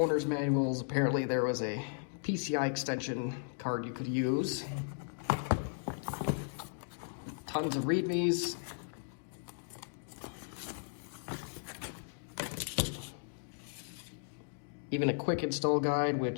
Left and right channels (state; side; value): silent; right; digital silence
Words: manuals. Apparently there was a PCI extension card you could use. Tons of readmes. Even a quick install guide,